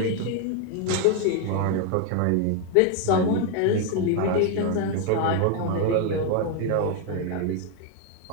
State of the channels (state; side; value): different; both; correlation 0.01